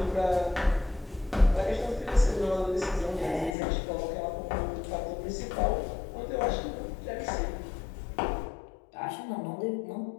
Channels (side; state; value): right; drops out; at 3.6 s